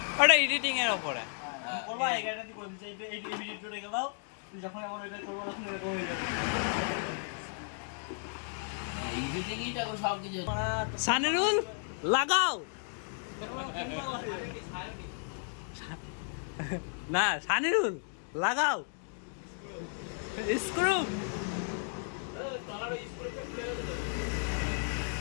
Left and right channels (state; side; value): silent; right; 55 dB below the other